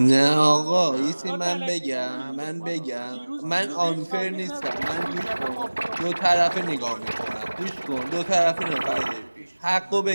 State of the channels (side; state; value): both; inverted; correlation -1.00